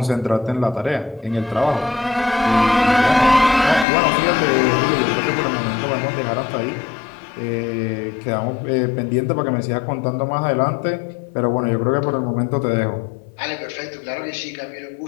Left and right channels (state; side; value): drops out; right; at 3.9 s